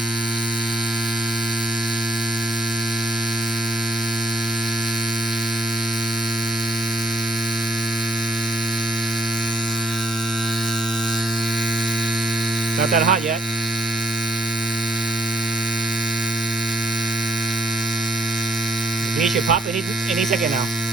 Not that hot yet. The bead should pop any second now,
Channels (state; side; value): normal; both; correlation 0.69